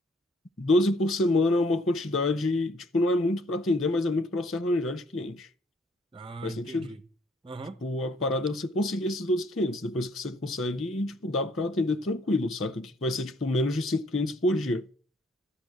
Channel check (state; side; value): normal; both; correlation 0.64